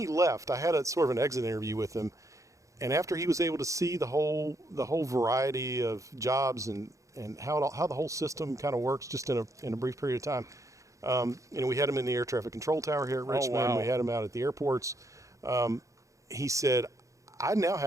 left, I had a sort of an exit interview with him. And after he was able to see the whole variety of jobs and how the whole system kind of works just in a brief period of time, we had him in the air traffic control tower here at Richmond. wow. We had him out at the airports. He said, I now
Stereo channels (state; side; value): late; left; 0.15 ms